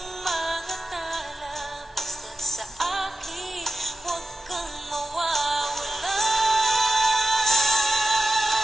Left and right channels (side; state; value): both; normal; correlation 0.92